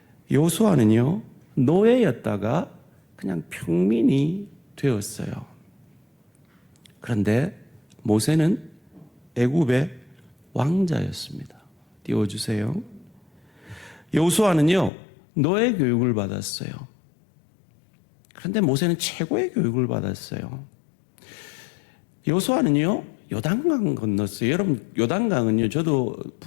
여호수아는요, 노예였다가 그냥 평민이 되었어요. 그런데 모세는 애굽의 왕자였습니다. 띄워주세요. 여호수아는요, 노예 교육을 받았어요. 그런데 모세는 최고의 교육을 받았어요. 여호수아는요, 요단강 건넜어요. 여러분, 요단강은요, 저도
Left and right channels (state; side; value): drops out; right; at 14.9 s